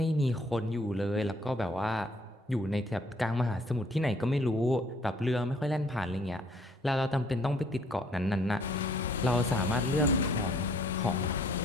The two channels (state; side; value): normal; both; correlation 0.62